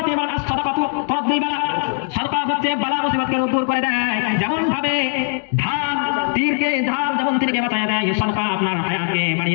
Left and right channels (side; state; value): right; silent; 57 dB below the other